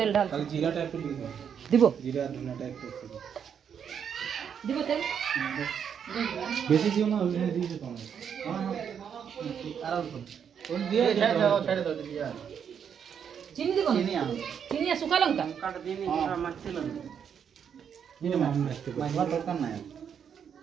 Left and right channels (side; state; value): left; quieter; 7.8 dB